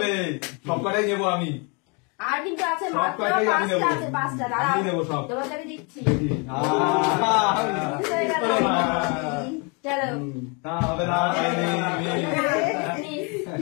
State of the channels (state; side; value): quieter; right; 33.1 dB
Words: সব কটাই নেবো আমি। আর কিন্তু আছে সব মাত্র কয়টাই আমি 5টা নেবো। আছে, 5টা। দাঁড়াও আমি নেবো সব। তোমাকে দিচ্ছি। দেখি চলো না হবে না।